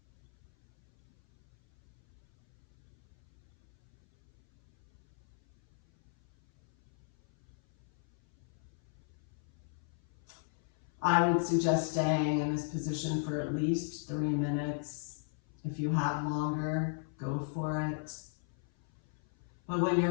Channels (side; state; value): right; silent; 55 dB below the other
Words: I would suggest staying in this position for at least 3 minutes. If you have longer, go for it. But when you're